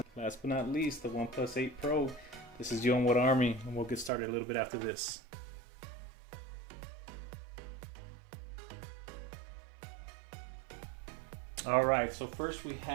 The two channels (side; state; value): left; drops out; at 4.1 s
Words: last but not least, the OnePlus 8 Pro. This is U-N-wutarmy, and we'll get started a little bit after this. Alright, so first we